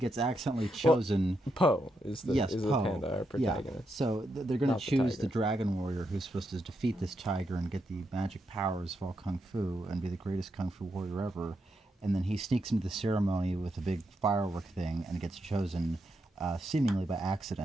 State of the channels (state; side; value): normal; both; correlation 0.82